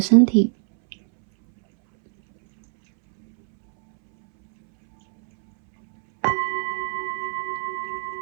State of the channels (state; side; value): silent; left; 65 dB below the other